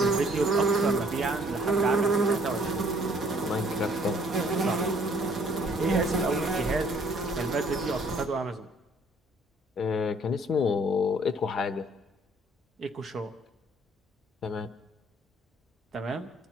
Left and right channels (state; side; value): normal; both; correlation 0.60